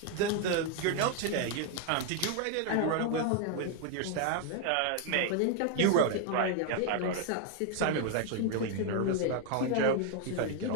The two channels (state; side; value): different; both; correlation 0.00